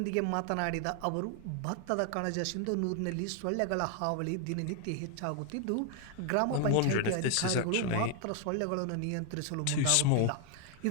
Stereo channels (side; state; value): both; different; correlation 0.00